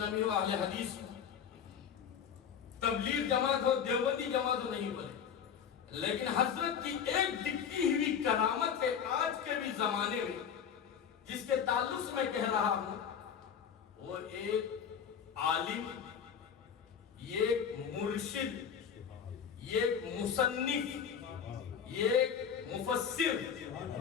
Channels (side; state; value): right; quieter; 7.7 dB